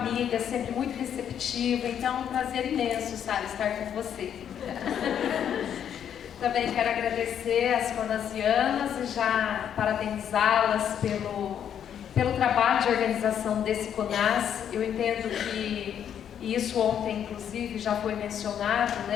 sempre muito receptiva. Então é um prazer imenso, Sara, estar com você. Também quero agradecer às conasianas e já parabenizá-las pelo trabalho de organização desse CONAS. Eu entendo que, e isso ontem inclusive já foi mencionado,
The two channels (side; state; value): right; quieter; 9.1 dB